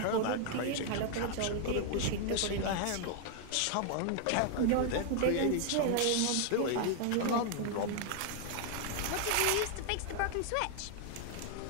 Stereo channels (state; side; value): different; both; correlation 0.00